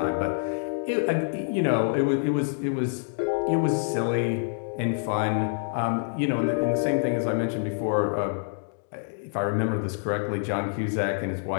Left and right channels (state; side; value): silent; right; digital silence